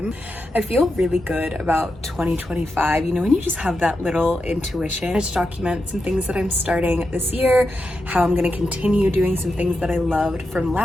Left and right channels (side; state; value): both; normal; correlation 0.88